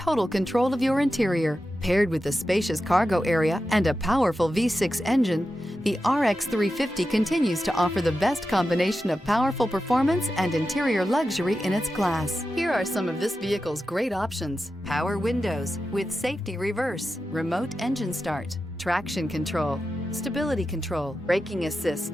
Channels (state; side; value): normal; both; correlation 0.91